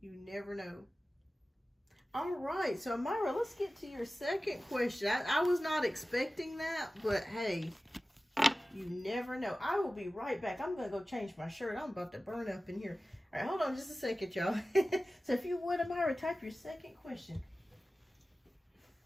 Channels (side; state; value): both; normal; correlation 0.96